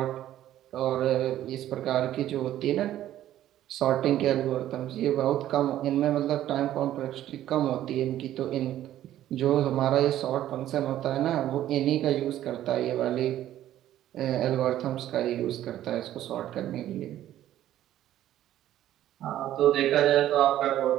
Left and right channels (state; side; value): quieter; left; 12.7 dB